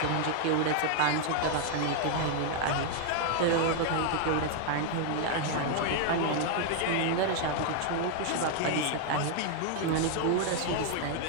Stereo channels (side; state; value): both; different; correlation 0.00